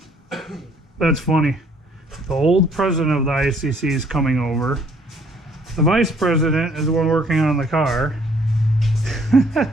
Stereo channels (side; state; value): both; normal; correlation 0.62